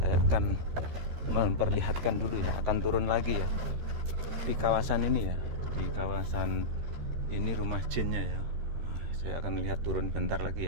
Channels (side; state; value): left; late; 13 ms